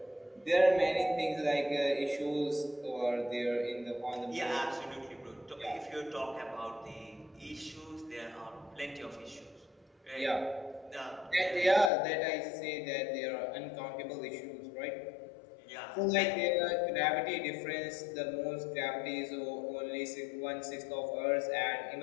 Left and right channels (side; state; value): right; drops out; at 11.9 s